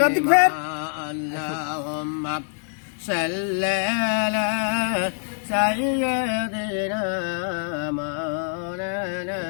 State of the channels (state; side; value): silent; right; digital silence